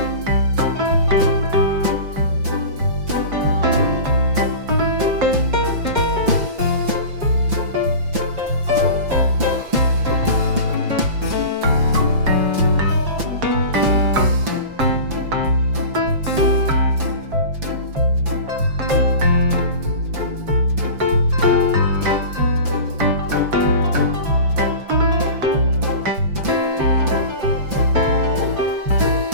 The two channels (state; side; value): late; left; 5.9 ms